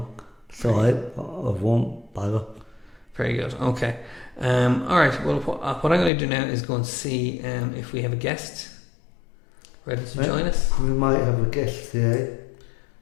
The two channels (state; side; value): drops out; right; at 6.1 s